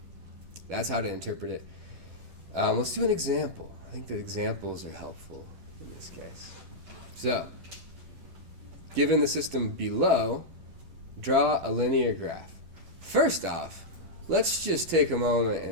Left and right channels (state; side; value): late; left; 10 ms